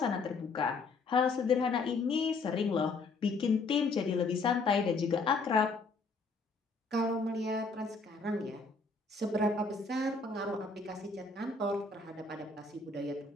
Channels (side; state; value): right; quieter; 4.0 dB